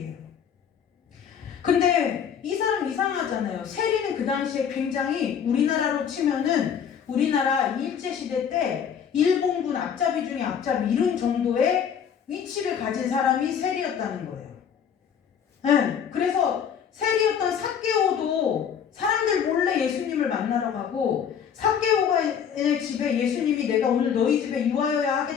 근데 이 사람 이상하잖아요. 세리는 그 당시에 굉장히 우리나라로 치면은 우리나라 일제시대 때 일본군 앞잡이 중에 앞잡이 이런 정도의 위치를 가진 사람이 세리였다는 거예요. 네, 그래서 세리였던 삭개오도 사람들 몰래 예수님을 만나러 가고 삭개오의 집에 예수님이 내가 오늘 너희 집에 유하여야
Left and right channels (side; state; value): right; quieter; 7.8 dB